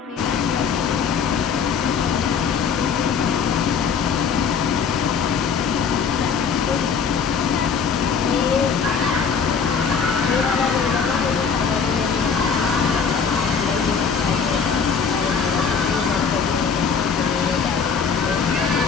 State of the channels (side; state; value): right; quieter; 6.2 dB